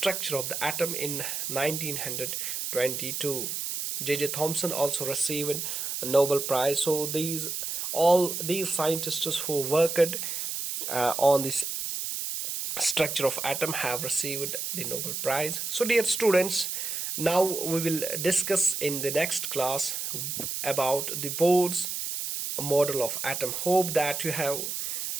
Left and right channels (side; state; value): right; noise; hiss, 3 dB below the sound